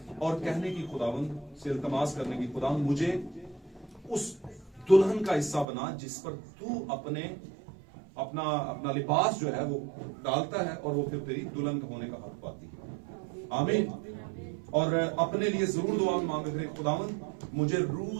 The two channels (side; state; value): left; drops out; at 5.7 s